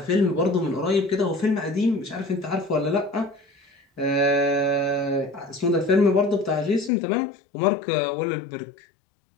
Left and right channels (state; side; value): drops out; right; at 6.9 s